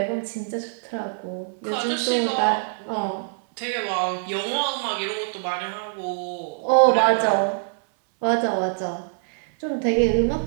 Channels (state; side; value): silent; left; 60 dB below the other